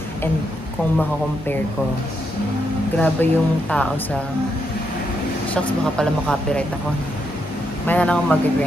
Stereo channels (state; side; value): normal; both; correlation 0.80